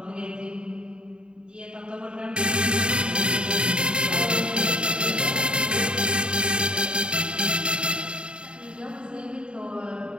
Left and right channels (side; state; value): left; late; 0.052 ms